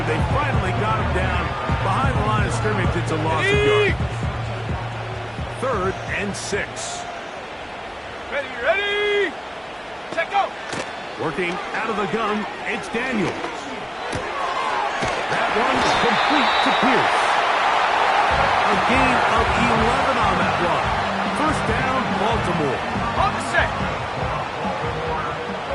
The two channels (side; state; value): both; identical; correlation 1.00